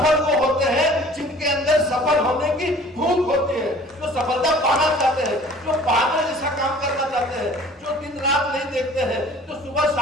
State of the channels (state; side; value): normal; both; correlation 0.50